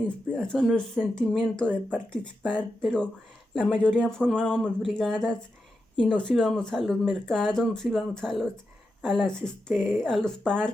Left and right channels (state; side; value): normal; both; correlation 0.88